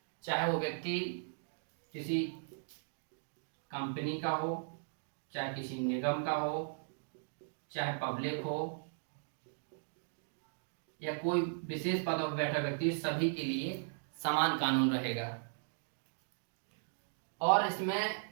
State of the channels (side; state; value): left; silent; digital silence